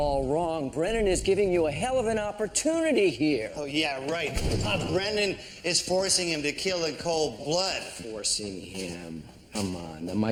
wrong. Brennan is giving you a hell of an opportunity here. Oh, yeah, right. Brennan is forcing him to kill in cold blood. Forcing him. Come on. The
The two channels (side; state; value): both; identical; correlation 1.00